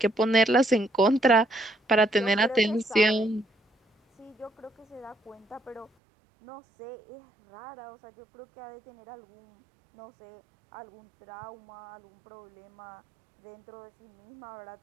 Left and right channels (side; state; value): left; drops out; at 5.9 s